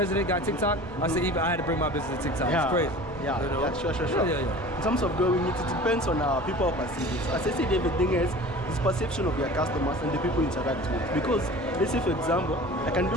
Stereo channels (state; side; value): normal; both; correlation 0.41